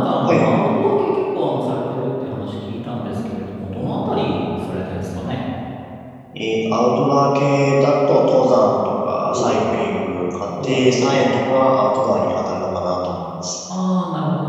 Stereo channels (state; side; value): identical; both; correlation 1.00